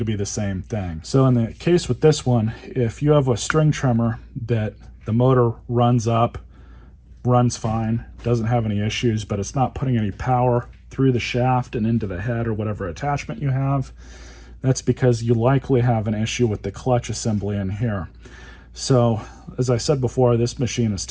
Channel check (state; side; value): identical; both; correlation 1.00